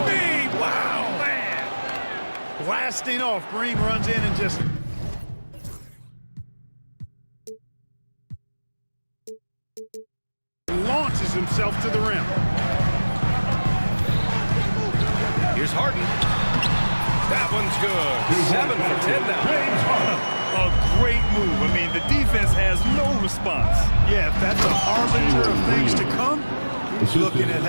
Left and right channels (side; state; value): both; inverted; correlation -1.00